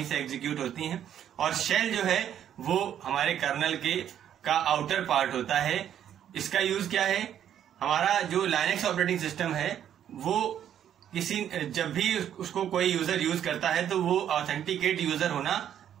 से एग्जीक्यूट होती हैं। और शेल जो है वो हमारे कर्नल का आउटर पार्ट होता है। इसका यूज क्या है? हमारा जो लाइनेक्स ऑपरेटिंग सिस्टम है वो जब भी उसको कोई यूजर यूज करता है तो वो ऑथेंटिकेट यूजर होना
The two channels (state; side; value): quieter; left; 10.0 dB